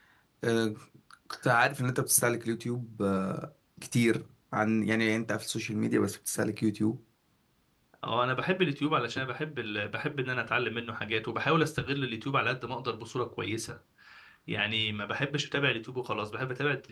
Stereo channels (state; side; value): identical; both; correlation 1.00